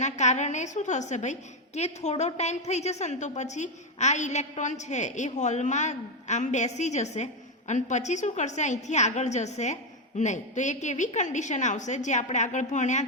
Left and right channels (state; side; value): normal; both; correlation 0.07